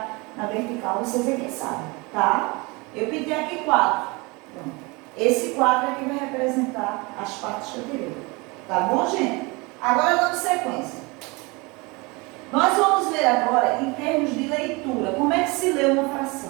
na vertical, você vê quem sabe, tá? Eu pintei aqui 4. Pronto. Esse 4 é que vai representar as partes que eu tirei. Tá bom, gente? Agora, dando sequência. Nós vamos ver agora, em termos de leitura, como é que se lê uma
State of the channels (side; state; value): left; quieter; 26.3 dB